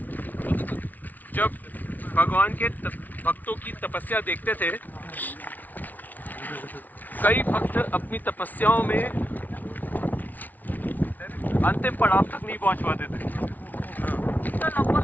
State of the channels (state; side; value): late; right; 0.079 ms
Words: जब भगवान के भक्तों की तपस्या देखते थे, कई भक्त अपनी तपस्याओं में अंतिम पड़ाव तक नहीं पहुंच पाते थे।